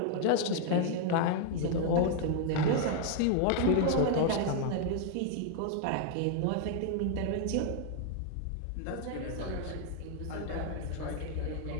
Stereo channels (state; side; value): different; both; correlation 0.00